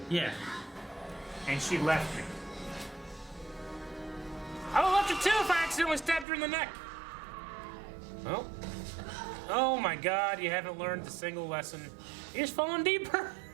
Yeah. and she left me. I would have left her too if I accidentally stabbed her in the neck. Well, oh my God, you haven't learned a single lesson. You're just falling deeper.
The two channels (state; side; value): drops out; left; at 6.2 s